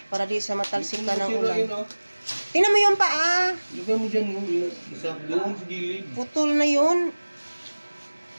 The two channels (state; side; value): inverted; both; correlation -1.00